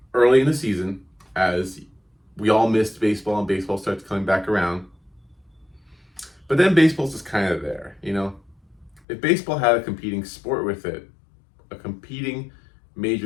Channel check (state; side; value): drops out; right; at 9.0 s